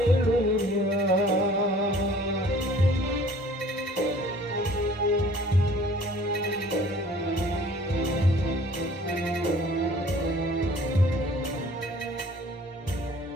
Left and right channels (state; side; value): normal; both; correlation 0.52